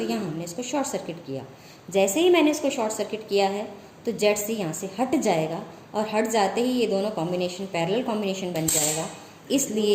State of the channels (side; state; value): both; identical; correlation 1.00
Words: यहाँ हमने इसको शॉर्ट सर्किट किया। जैसे ही मैंने इसको शॉर्ट सर्किट किया है तो ZC यहाँ से हट जाएगा और हट जाते ही ये दोनों कॉम्बिनेशन पैरेलल कॉम्बिनेशन बन जाएगा।